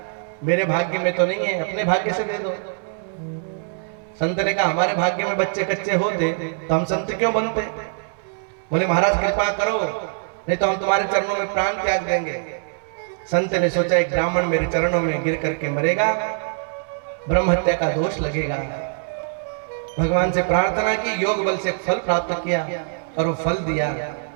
मेरे भाग्य में तो नहीं है, अपने भाग्य से दे दो। संत ने कहा हमारे भाग्य में बच्चे कच्चे होते तो हम संत क्यों बनते? बोले महाराज कृपा करो, नहीं तो हम तुम्हारे चरणों में प्राण त्याग देंगे। संत ने सोचा एक ब्राह्मण मेरे चरणों में गिर करके मरेगा, ब्रह्म हत्या का दोष लगेगा। भगवान से प्रार्थना की, योग बल से फल प्राप्त किया और वो फल दिया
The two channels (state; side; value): silent; left; digital silence